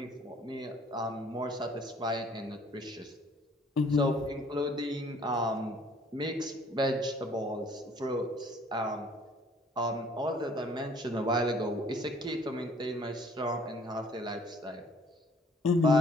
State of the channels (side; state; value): both; normal; correlation 0.57